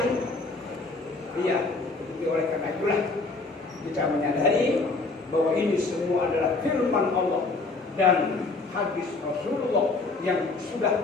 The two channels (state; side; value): quieter; right; 3.7 dB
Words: Iya. Oleh karena itulah kita menyadari bahwa ini semua adalah firman Allah dan hadis Rasulullah yang sudah